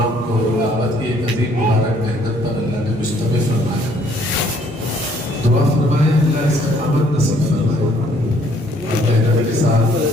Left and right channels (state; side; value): normal; both; correlation 0.63